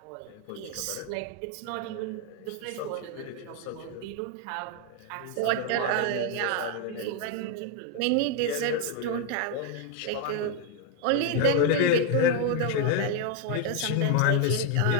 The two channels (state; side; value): different; both; correlation 0.01